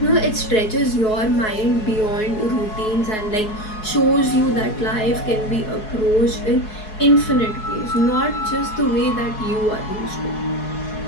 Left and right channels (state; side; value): late; right; 4.7 ms